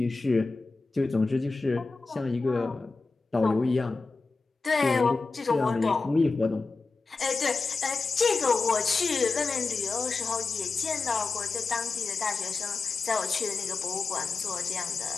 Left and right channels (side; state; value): right; quieter; 4.0 dB